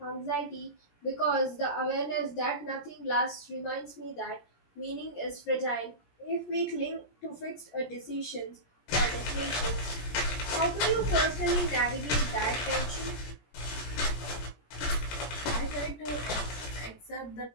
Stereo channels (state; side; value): late; right; 17 ms